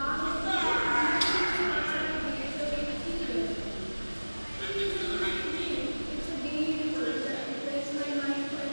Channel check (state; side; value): inverted; both; correlation -1.00